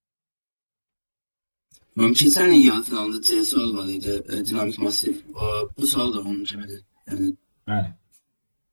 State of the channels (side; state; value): both; inverted; correlation -1.00